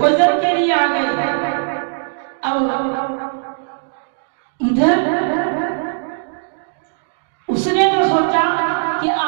के लिए आ गए। अब इधर उसने तो सोचा कि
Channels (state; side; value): silent; left; digital silence